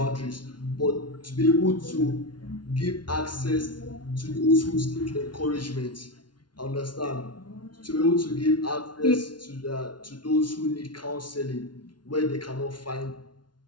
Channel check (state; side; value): late; right; 0.70 ms